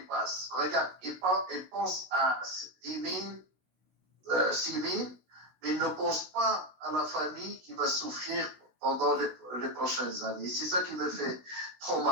passe. Regarde, il pense à 10 000, 6 000, mais il ne pense pas à la famille qui va souffrir pendant les prochaines années. C'est ça qui me fait trop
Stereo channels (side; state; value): left; late; 16 ms